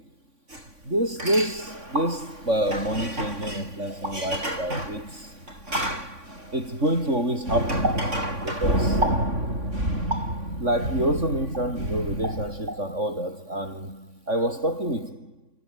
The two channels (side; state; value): left; late; 3.5 ms